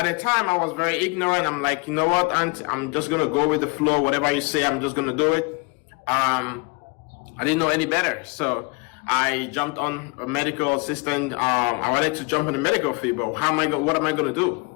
the time, I was very ignorant. I'm like, you know what, aunt, I'm just going to go with the flow. Whatever you say, I'm just going to do it. I didn't know any better. So I jumped on a medical assistant. I wanted to jump in the medical field, but what am I going to do?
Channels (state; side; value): quieter; right; 29.6 dB